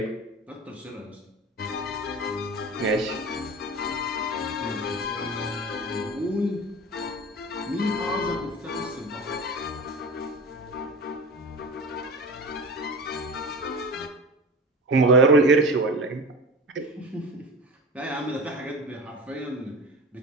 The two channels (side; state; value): both; normal; correlation 0.32